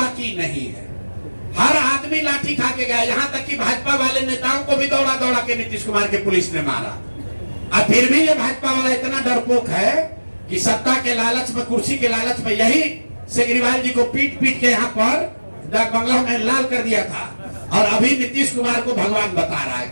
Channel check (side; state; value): both; inverted; correlation -1.00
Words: नहीं है। हर आदमी लाठी खा के गया, यहाँ तक कि भाजपा वाले नेताओं को भी दौड़ा दौड़ा के नीतीश कुमार के पुलिस ने मारा। और फिर भी ये भाजपा वाला इतना डरपोक है कि सत्ता के लालच में, कुर्सी के लालच में, यही केजरीवाल जी को पीट पीट के यहाँ पर डाक बंगला में लाल कर दिया था, और अभी नीतीश कुमार को भगवान बता रहा है।